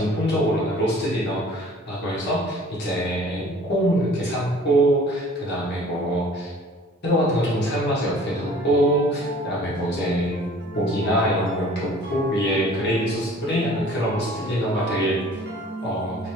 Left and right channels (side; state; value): both; normal; correlation 0.50